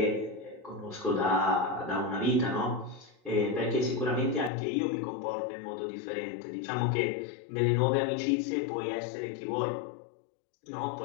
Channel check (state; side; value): drops out; right; at 4.5 s